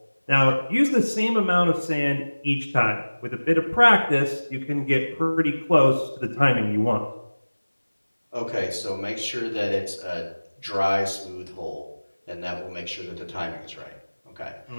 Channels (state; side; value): inverted; both; correlation -1.00